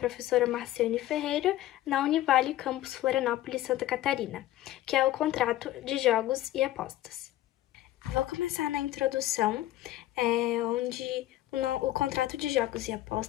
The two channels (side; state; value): right; quieter; 14.5 dB